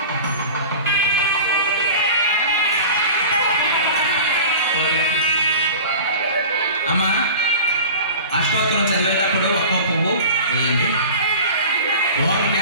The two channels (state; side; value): inverted; both; correlation -0.37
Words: అమ్మా అష్టోత్తరం చదివేటప్పుడు ఒక్కో పువ్వు వేయండి ఓం